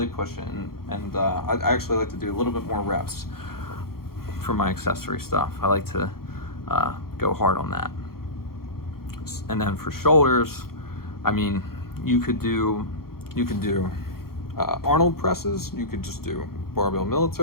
push it. And I actually like to do a little bit more reps for my accessory stuff. I like to go hard on that. And then for shoulders, I mean, you could do Arnold presses. You could just do barbell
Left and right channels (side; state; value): right; late; 0.94 ms